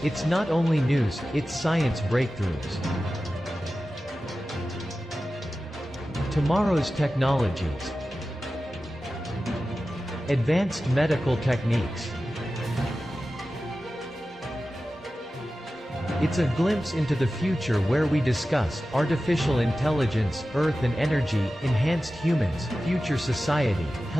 It's not only news, it's science breakthroughs. Tomorrow's technologies. Advanced medical techniques. It's a glimpse into the future where we discuss artificial intelligence, earth and energy, enhanced humans, future society,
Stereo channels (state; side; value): normal; both; correlation 0.94